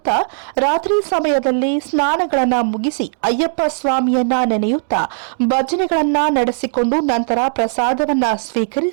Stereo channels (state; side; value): silent; left; digital silence